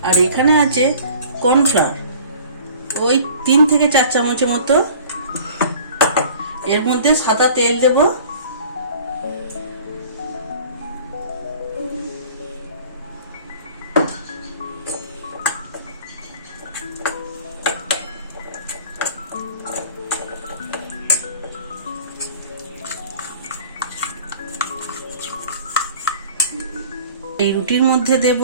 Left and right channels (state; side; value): inverted; both; correlation -0.47